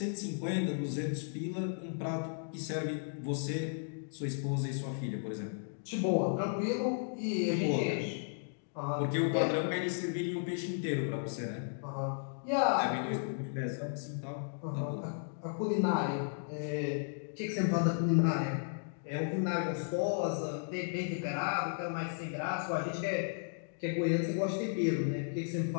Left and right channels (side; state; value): right; silent; digital silence